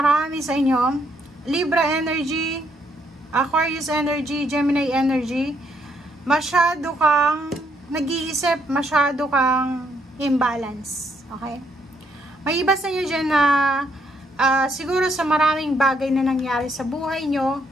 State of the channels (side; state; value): both; normal; correlation 0.73